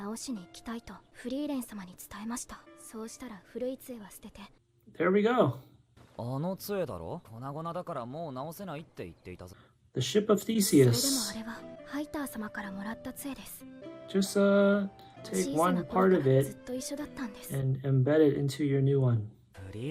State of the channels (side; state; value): both; identical; correlation 1.00